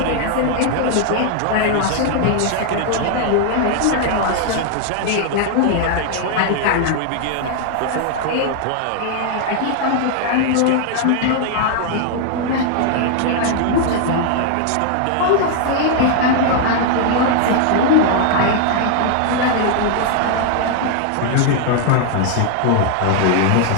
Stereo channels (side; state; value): both; different; correlation 0.00